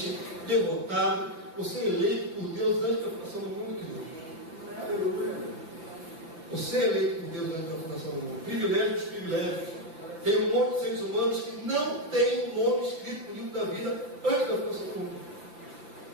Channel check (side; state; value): left; late; 6.2 ms